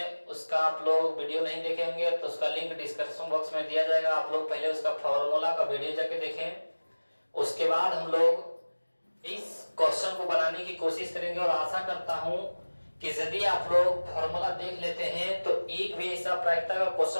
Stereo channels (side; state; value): both; inverted; correlation -1.00